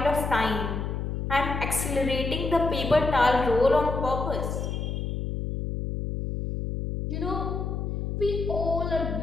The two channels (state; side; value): noise; left; hum, 3 dB below the sound